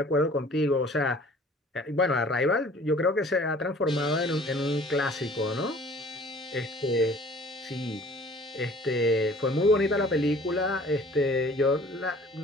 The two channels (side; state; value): both; normal; correlation 0.50